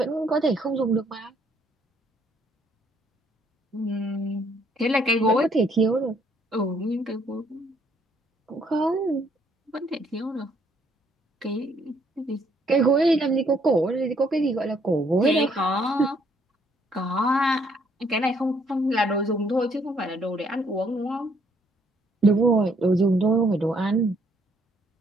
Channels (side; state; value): both; normal; correlation 0.67